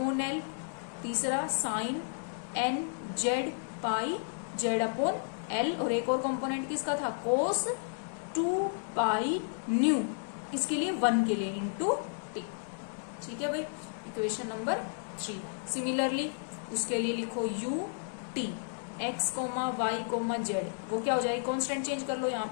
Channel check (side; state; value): right; silent; digital silence